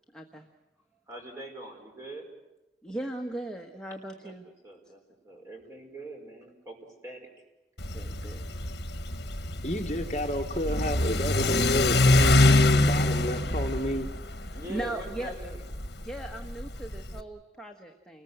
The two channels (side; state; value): both; normal; correlation 0.71